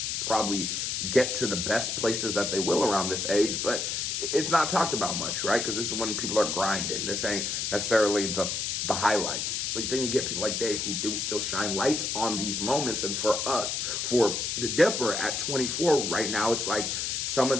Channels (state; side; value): noise; left; hiss, 1 dB below the sound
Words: probably get to the best places that they will around this age, but it's not talked about much, right? Because this is when people are grinding. This ain't necessarily the highlights. But then you get people like Dave who do still shine lights on these moments. And for us, for the Dipper at 24 right now, it's like some of